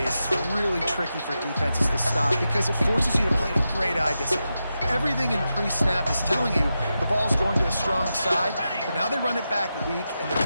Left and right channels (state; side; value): inverted; both; correlation -0.89